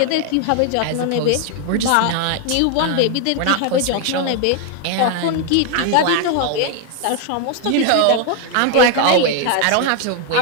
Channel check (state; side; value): different; both; correlation 0.01